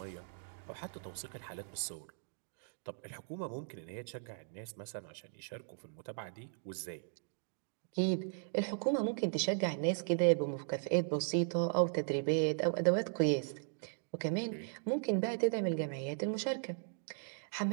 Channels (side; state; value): left; silent; digital silence